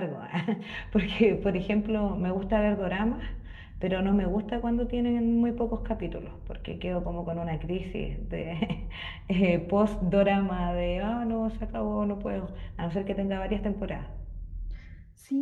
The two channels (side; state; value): both; identical; correlation 1.00